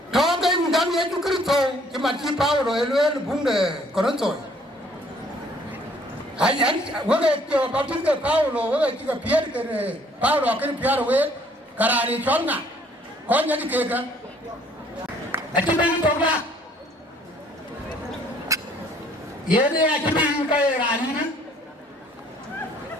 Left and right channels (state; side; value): normal; both; correlation 0.61